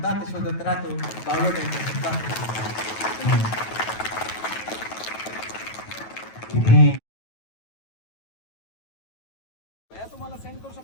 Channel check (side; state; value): right; late; 9.2 ms